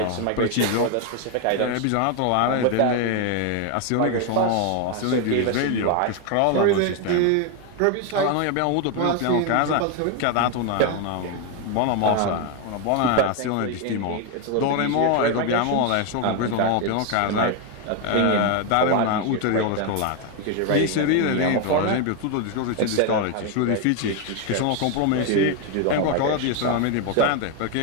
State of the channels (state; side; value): different; both; correlation 0.01